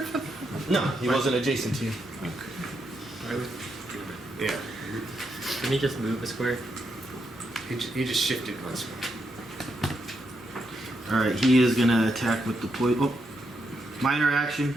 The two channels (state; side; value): normal; both; correlation 0.81